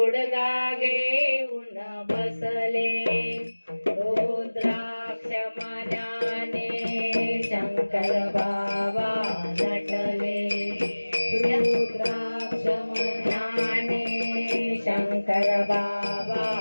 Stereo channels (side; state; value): both; inverted; correlation -1.00